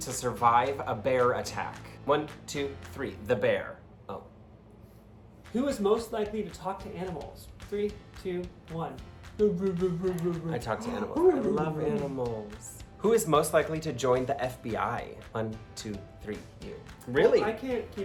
survive a bear attack? 1, 2, 3. The bear. Oh. Who is most likely to talk to animals? 3, 2, 1. I talk to animals. I love animals. Who is most likely to join the FBI? 1, 2, 3. You. Really? Well, I can't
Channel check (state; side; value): identical; both; correlation 1.00